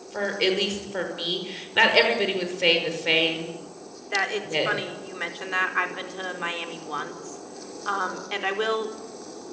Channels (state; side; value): identical; both; correlation 1.00